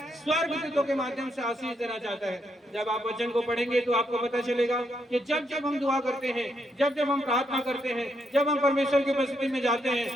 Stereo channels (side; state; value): both; normal; correlation 0.78